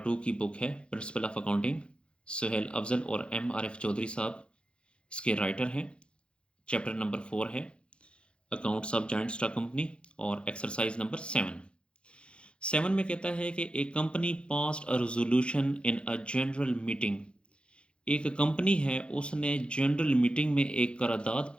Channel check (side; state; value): right; late; 0.056 ms